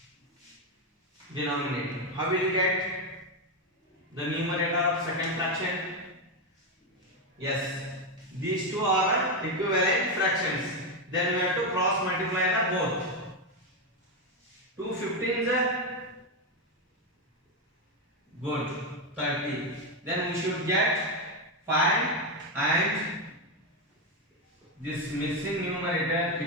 Denominator. How will you get the numerator of second fraction? Yes, these two are equivalent fractions. Then we have to cross multiply the both. 2 15s are good, 30. Then we should get 5 and this missing numerator,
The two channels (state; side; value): normal; both; correlation 0.08